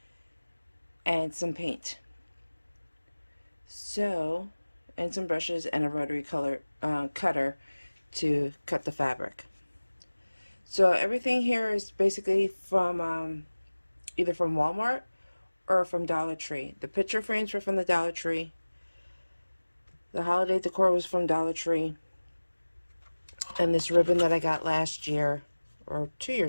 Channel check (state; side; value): inverted; both; correlation -1.00